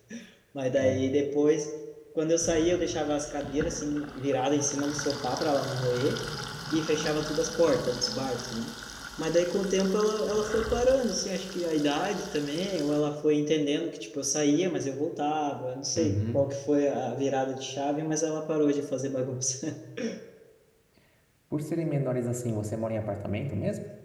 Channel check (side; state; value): both; identical; correlation 1.00